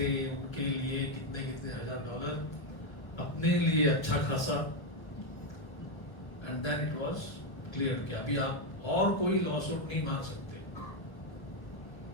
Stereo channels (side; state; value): right; late; 1.2 ms